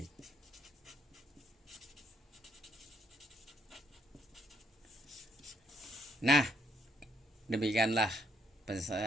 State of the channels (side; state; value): both; normal; correlation 0.69